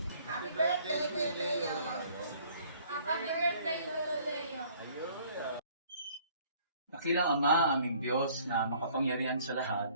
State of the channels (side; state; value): both; inverted; correlation -0.57